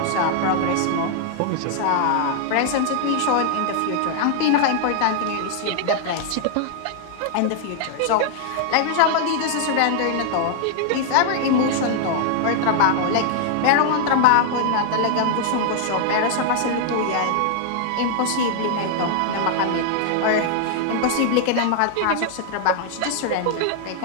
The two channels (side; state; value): both; different; correlation 0.00